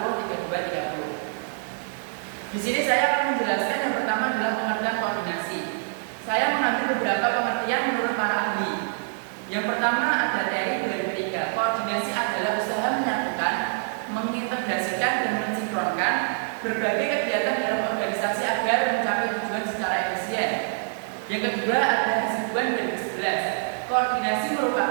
Di sini saya akan menjelaskan yang pertama adalah pengertian koordinasi. Saya mengambil beberapa pengertian menurut para ahli. Yang pertama ada Terry 2003. Koordinasi adalah usaha menyatukan, mengintegrasikan dan mensinkronkan berbagai kegiatan dalam organisasi agar mencapai tujuan secara efisien. Yang kedua ada Hasibuan 2011. Koordinasi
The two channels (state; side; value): silent; left; digital silence